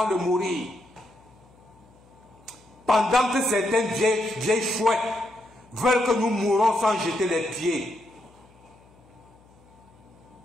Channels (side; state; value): left; noise; hum, 28 dB below the sound